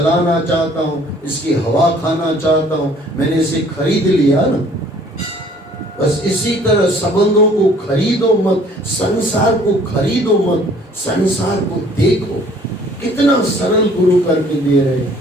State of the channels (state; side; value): normal; both; correlation 0.56